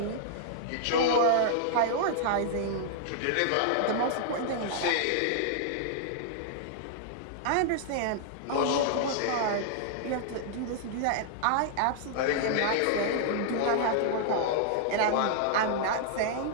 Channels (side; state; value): both; different; correlation -0.01